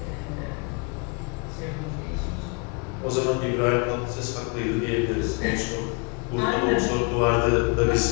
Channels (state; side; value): quieter; right; 32.9 dB